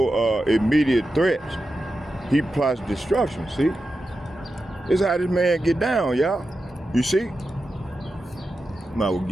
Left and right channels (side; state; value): both; normal; correlation 0.90